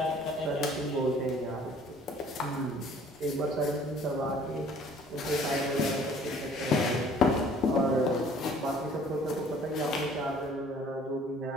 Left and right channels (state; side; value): normal; both; correlation 0.54